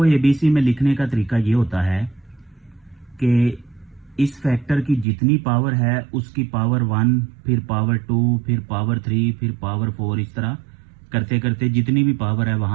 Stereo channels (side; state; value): left; drops out; at 5.1 s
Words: ABC में लिखने का तरीका ये होता है कि इस फैक्टर की जितनी पावर है उसकी पावर 1, फिर पावर 2, फिर पावर 3, फिर पावर 4, इस तरह करते करते जितनी भी पावर है